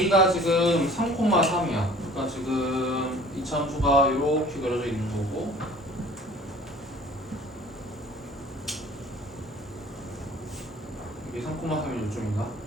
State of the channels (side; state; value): both; normal; correlation 0.49